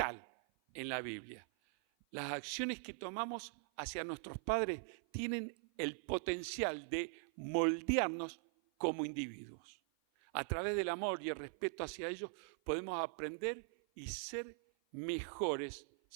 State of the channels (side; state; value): left; silent; 50 dB below the other